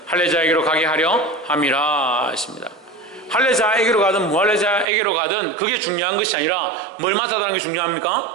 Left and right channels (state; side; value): drops out; left; at 4.9 s